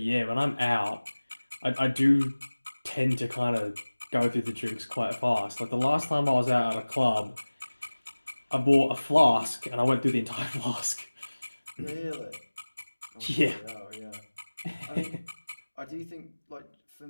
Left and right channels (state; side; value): inverted; both; correlation -1.00